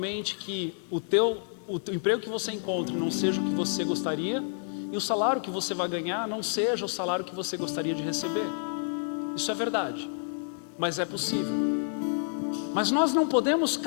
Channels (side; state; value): right; silent; 59 dB below the other